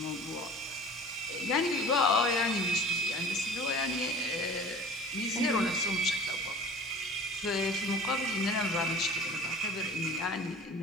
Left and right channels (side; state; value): both; normal; correlation 0.42